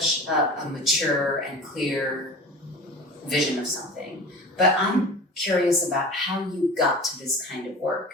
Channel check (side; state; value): both; normal; correlation 0.36